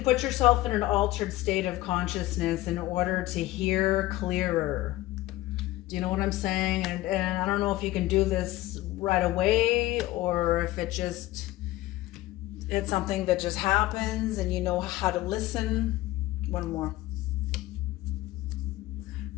put yourself in an altered state of consciousness in order to hear clearer. Do you know what I'm saying? And I don't know if you can do this right away, or if it's something that just happens and you know how to listen. One more.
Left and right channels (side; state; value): right; quieter; 17.0 dB